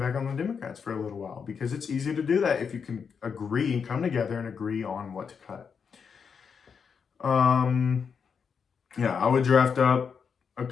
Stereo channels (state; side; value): quieter; right; 6.3 dB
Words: back on the Democrats for a little while, because it's easy to do that if you can agree and come together and agree on what to cut. I would draft up a